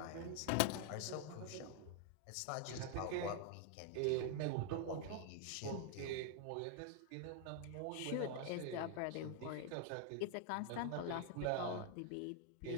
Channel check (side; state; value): both; different; correlation 0.00